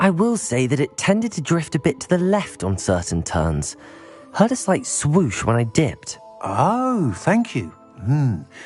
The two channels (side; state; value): both; identical; correlation 1.00